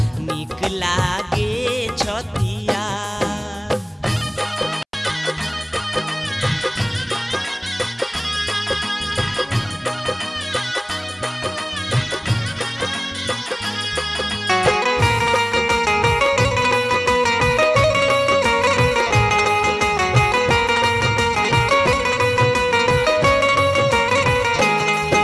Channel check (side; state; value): both; identical; correlation 1.00